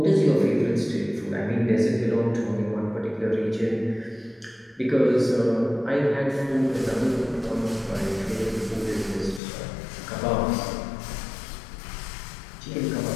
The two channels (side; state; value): right; drops out; at 9.4 s